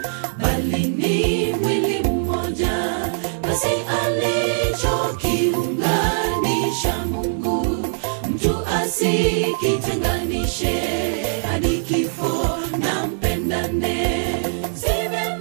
bali ni mwili mmoja, basi alichokiunganisha Mungu, mtu asikitenganishe. Hadi kifo na mpendane. Si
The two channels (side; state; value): left; silent; digital silence